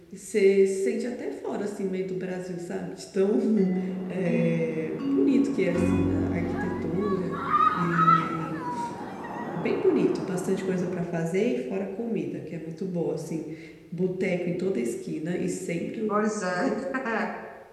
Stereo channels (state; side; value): identical; both; correlation 1.00